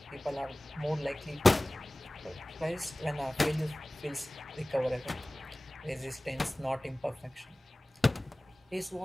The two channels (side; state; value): both; normal; correlation 0.98